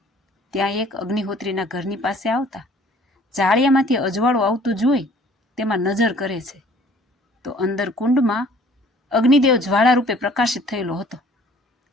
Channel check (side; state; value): both; normal; correlation 0.54